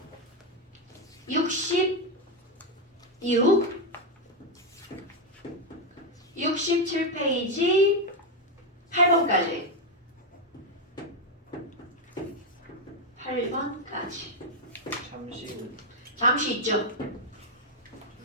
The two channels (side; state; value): both; normal; correlation 0.04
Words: 66 67페이지 8번까지 8번까지 잠시 있죠?